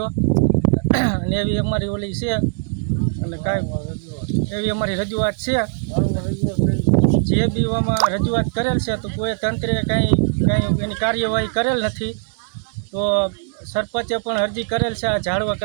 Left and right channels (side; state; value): left; silent; digital silence